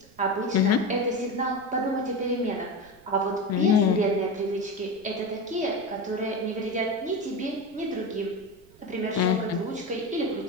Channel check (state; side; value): noise; right; rumble, 27 dB below the sound